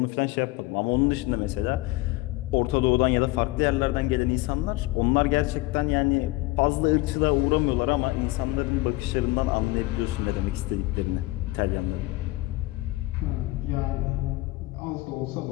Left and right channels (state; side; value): quieter; right; 19.9 dB